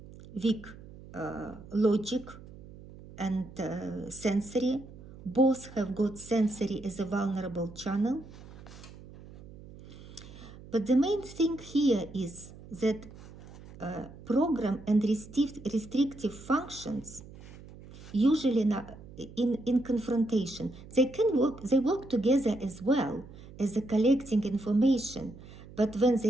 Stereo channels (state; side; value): noise; right; hum, 18 dB below the sound